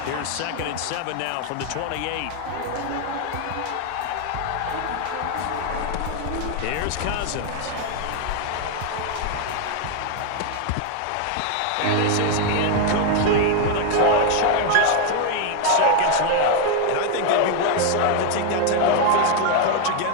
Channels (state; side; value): different; both; correlation 0.01